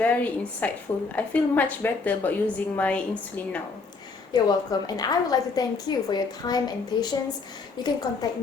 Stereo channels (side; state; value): right; quieter; 4.3 dB